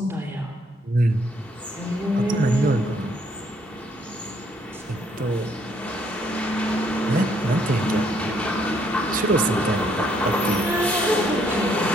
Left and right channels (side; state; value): both; normal; correlation 0.68